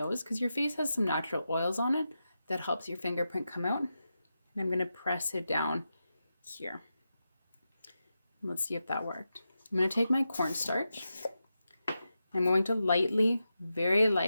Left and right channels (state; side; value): inverted; both; correlation -0.89